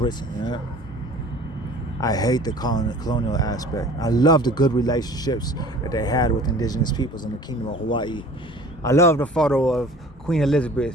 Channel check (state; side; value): normal; both; correlation 0.46